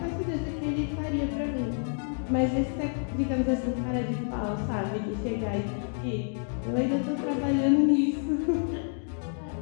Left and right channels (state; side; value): silent; right; 59 dB below the other